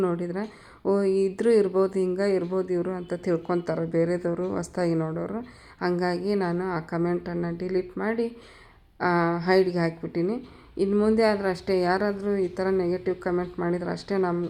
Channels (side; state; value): both; identical; correlation 1.00